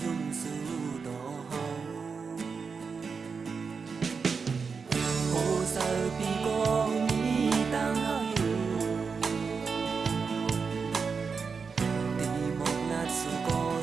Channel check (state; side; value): quieter; left; 5.3 dB